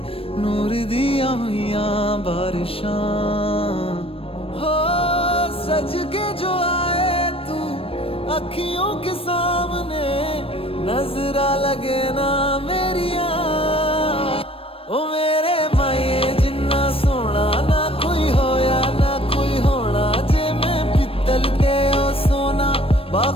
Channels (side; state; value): right; late; 0.27 ms